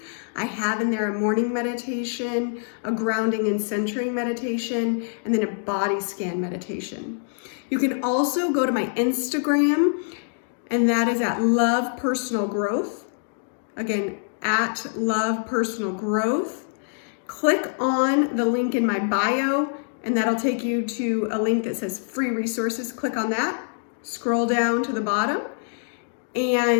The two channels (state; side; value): silent; right; digital silence